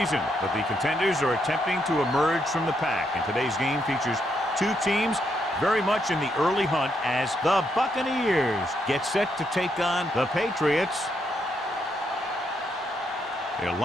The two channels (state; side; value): normal; both; correlation 0.77